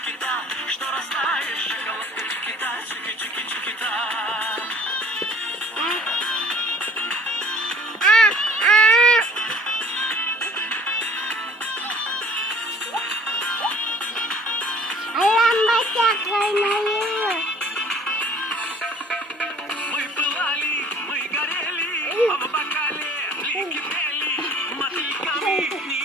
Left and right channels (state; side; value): normal; both; correlation 0.53